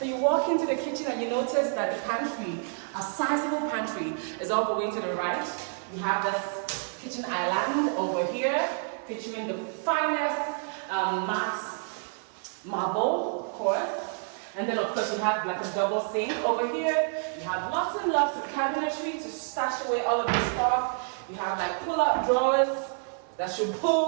you walk into the kitchen and you notice that the pantry, a sizable pantry, is all the way to the right. You have this kitchen island over here, featuring the finest matte marble, of course. And then, of course, you have like a double sink over here. You have lots and lots of cabinetry to stash away all of the stuff. You have like pull-out drawers that should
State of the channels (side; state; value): left; silent; 59 dB below the other